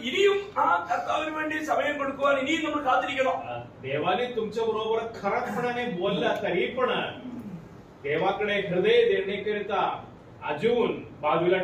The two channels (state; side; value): identical; both; correlation 1.00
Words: ഇനിയും ആ കർത്താവിന് വേണ്ടി സമയം കൊടുക്കുവാൻ ഇനിയും നമ്മൾ കാത്തിരിക്കണം. देवाने तुमच्या बरोबर खराबपणाने बोलला तरी पण देवाकडे हृदय देण्याकरिता अजून बाजूला